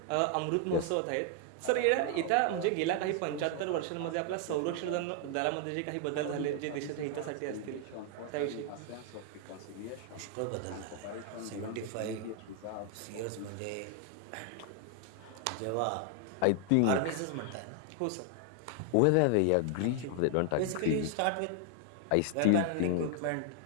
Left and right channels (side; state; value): both; different; correlation 0.00